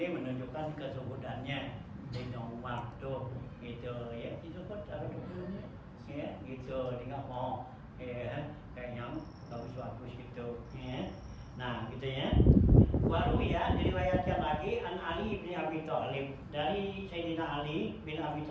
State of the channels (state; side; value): identical; both; correlation 1.00